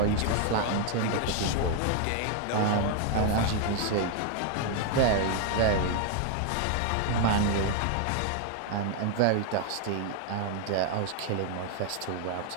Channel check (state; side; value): different; both; correlation 0.00